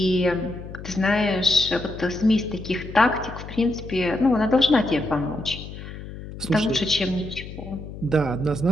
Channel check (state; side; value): noise; left; hum, 12 dB below the sound